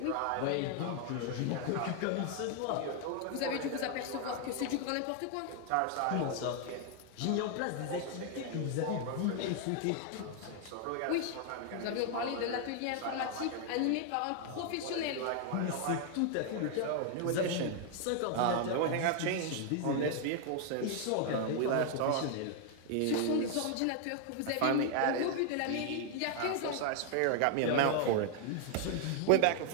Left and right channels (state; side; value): different; both; correlation 0.00